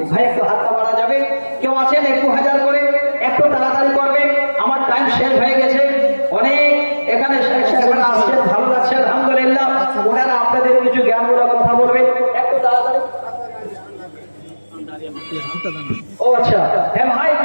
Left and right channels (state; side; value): inverted; both; correlation -1.00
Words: ভাই একটু হাতটা বাড়া যাবে? কেউ আছেন? একটু 1000 করে, একটু তাড়াতাড়ি করবেন, আমার টাইম শেষ হয়ে গেছে। অনেক এখানে শেখ সাহেবরা আসছেন, ভালো লাগছে আলহামদুলিল্লাহ। ওনারা আপনাদের কিছু জ্ঞানমূলক কথা বলবেন, একটু তাড়াতাড়ি। ও আচ্ছা, হ্যাঁ ভাই,